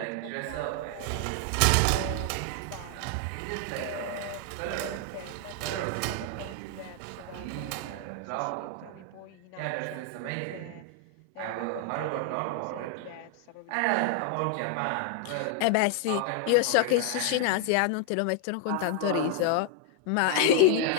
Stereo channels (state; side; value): different; both; correlation 0.00